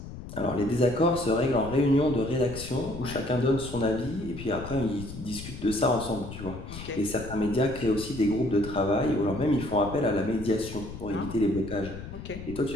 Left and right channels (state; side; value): noise; left; rumble, 11 dB below the sound